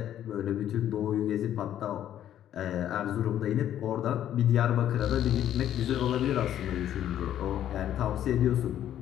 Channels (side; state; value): right; quieter; 11.1 dB